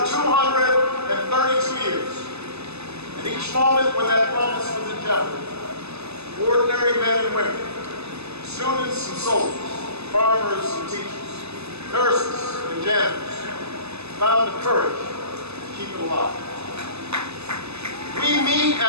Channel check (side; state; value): left; late; 0.79 ms